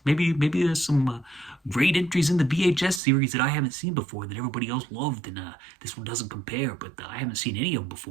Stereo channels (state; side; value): drops out; left; at 3.0 s